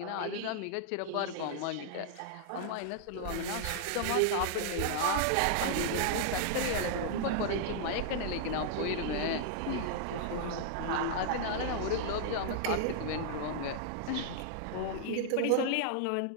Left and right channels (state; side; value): different; both; correlation -0.01